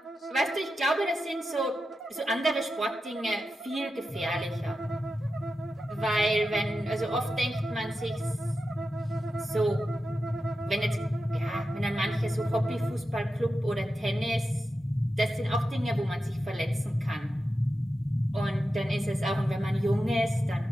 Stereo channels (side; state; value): both; normal; correlation 0.91